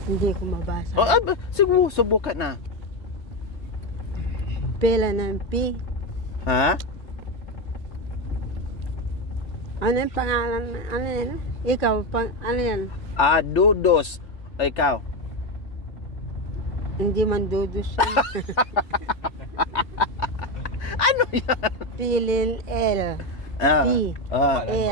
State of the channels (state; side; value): late; right; 3.3 ms